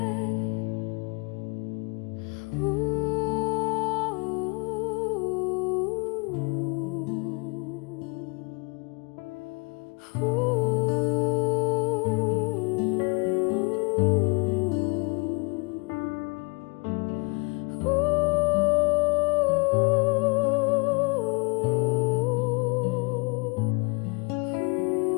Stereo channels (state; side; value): quieter; right; 30.9 dB